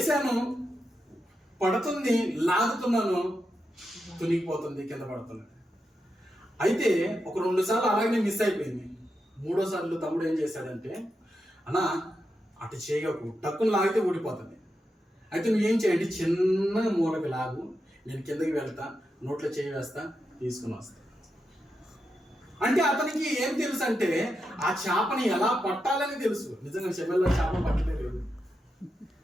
పడుతుంది, లాగుతున్నాను, తునిగిపోతుంది, కింద పడుతుంది. అయితే ఒక 2 సార్లు అలాగే మిస్ అయిపోయింది. 3వ సార్లు తమ్ముడు ఏం చేశాడంటే, అన్న అటు చేయకు, టక్కును లాగితే ఊడిపోతుంది, అయితే నువ్వేం చేయండి, చిన్న మూలకి లాగు, నేను కిందకి వెళ్తా, నోట్లో చేయి వేస్తా, తీసుకుని వస్తా. అంటే అతనికి ఏం తెలుసు అంటే ఆ చేపని ఎలా పట్టాలని తెలుసు. నిజంగా చెమెల్లో చేప పట్టలే లేదు,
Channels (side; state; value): both; normal; correlation 0.87